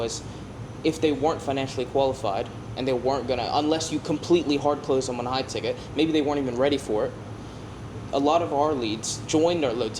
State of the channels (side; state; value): both; identical; correlation 1.00